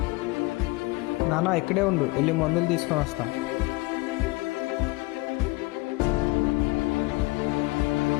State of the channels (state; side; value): quieter; right; 22.9 dB